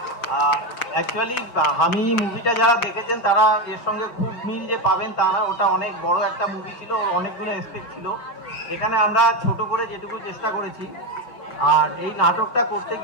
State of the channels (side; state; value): right; late; 5.9 ms